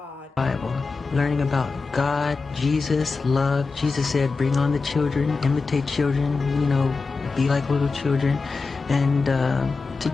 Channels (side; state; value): right; quieter; 4.3 dB